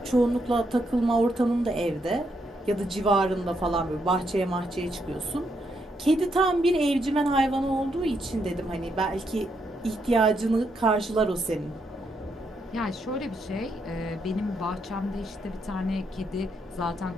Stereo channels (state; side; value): normal; both; correlation 0.78